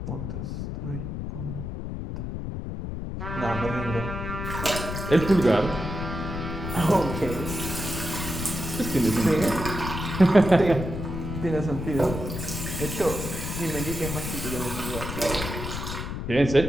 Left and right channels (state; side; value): noise; left; rumble, 5 dB below the sound